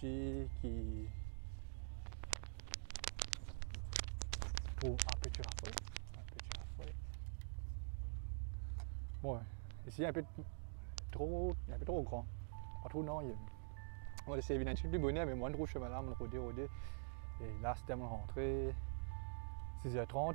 qui trouve un petit rafraîchissement. Bon, ici un peu trop grand, pas trop non. On va essayer d'éviter un plus bonnet, mais moi je trouve chemin là, mon rodé. Et là c'était mon rentrée,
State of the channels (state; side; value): silent; left; digital silence